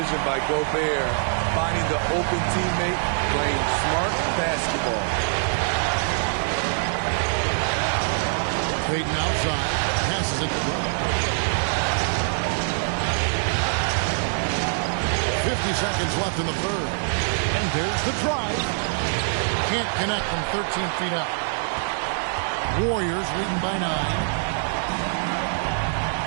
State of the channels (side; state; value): left; silent; digital silence